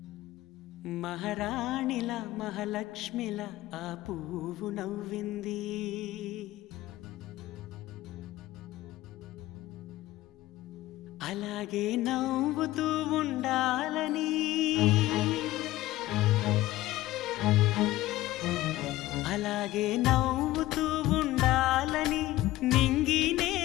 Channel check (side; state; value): right; quieter; 16.5 dB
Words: మహారాణిల మహాలక్ష్మిల ఆ పువ్వు నవ్వింది. అలాగే నవ్వుతూ ఉండాలని, అలాగే నవ్వుతూ ఉండాలని నింగి